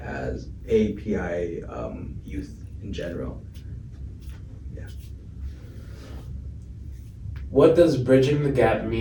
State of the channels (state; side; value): identical; both; correlation 1.00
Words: as API youth in general. Yeah. What does bridging the gap